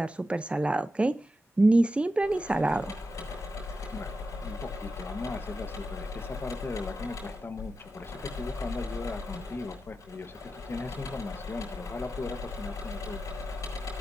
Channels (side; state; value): both; normal; correlation 0.90